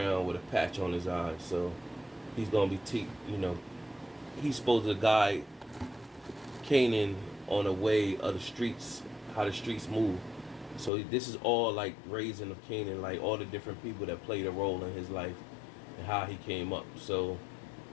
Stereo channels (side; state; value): right; drops out; at 10.9 s